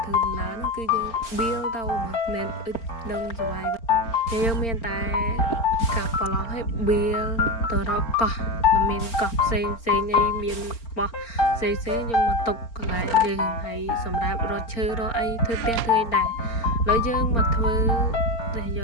ធ្វើដំណើរហ្នឹងគឺយើង build ទៅមិនអឹកនឹងសុវ័យយើងមានតែកាប់ប្លង់ឲ្យ build ទៅរកកោះមានកោះផ្សេងអីមានបោះផ្សេងយើងមកទុកកន្លែងយើងហើយសម្រាប់រកឈើរកអីធ្វើផ្ទះធ្វើអីដែរហើយយើងមកធ្វើតែយ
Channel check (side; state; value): right; late; 4.4 ms